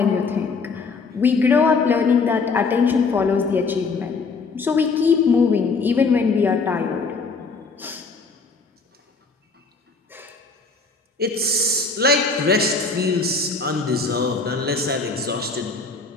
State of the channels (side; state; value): right; quieter; 4.3 dB